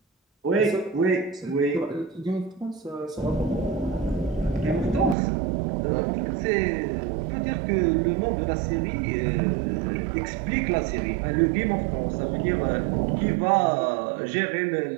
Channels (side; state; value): left; drops out; at 5.2 s